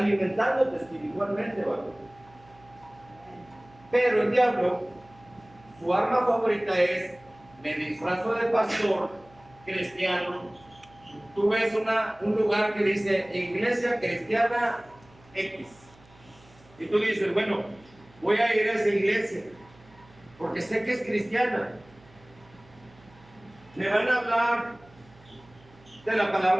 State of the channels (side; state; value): right; noise; hum, 26 dB below the sound